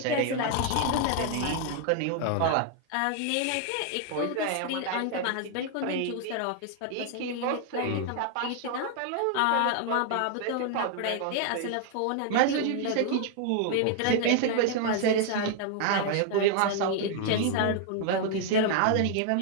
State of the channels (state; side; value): different; both; correlation 0.00